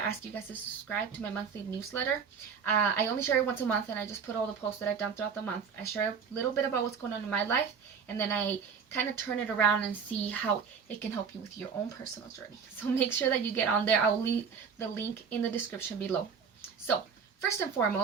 you guys to subscribe to my monthly newsletter. I only share it once a month, and I just put all the posts that I've done throughout the month. I share a little bit about what's going on in my life, and then I kind of turn it around and see how it can help you with your own personal journey. So make sure that you get on there. I'll leave the link in the description below. So first and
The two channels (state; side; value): quieter; left; 6.3 dB